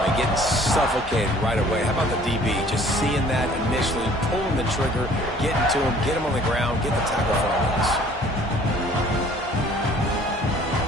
Getting suffocated right away. How about the DB? Just seeing that initially, pulling the trigger, getting to him, get him on the ground, get the tackle for us.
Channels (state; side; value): normal; both; correlation 0.54